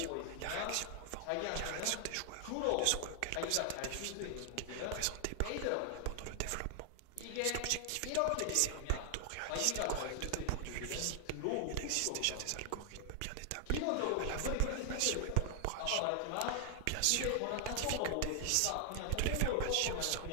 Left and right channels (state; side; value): different; both; correlation 0.00